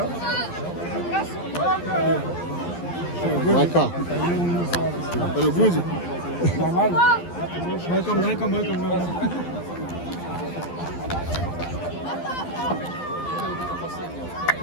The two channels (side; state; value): right; late; 12 ms